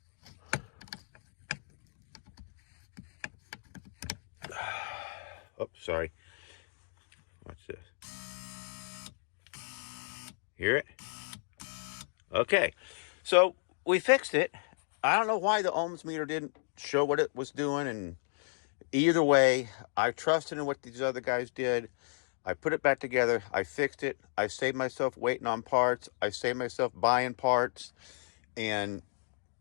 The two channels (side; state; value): right; silent; digital silence